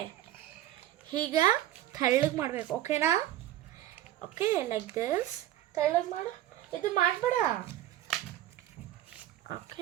ಹೀಗ ತೆಳ್ಳಗೆ ಮಾಡಬೇಕು. ಓಕೆನಾ? ಓಕೆ, ಲೈಕ್ ದಿಸ್ ತೆಳ್ಳಗೆ ಮಾಡು. ಇದು ಮಾಡಬೇಡ.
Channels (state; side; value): quieter; left; 13.5 dB